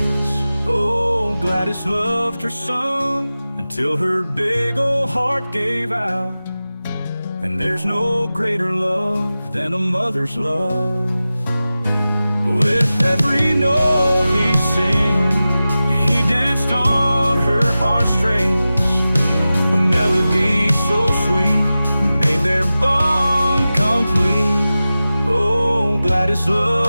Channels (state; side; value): inverted; both; correlation -0.95